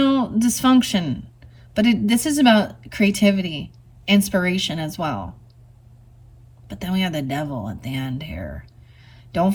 But this is about creativity, inspiration as well. But then we have the Devil at the end here. Don't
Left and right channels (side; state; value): both; identical; correlation 1.00